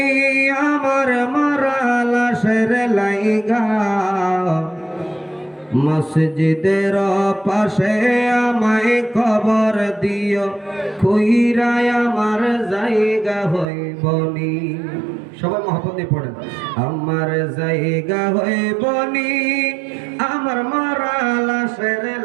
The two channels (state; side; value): drops out; left; at 13.7 s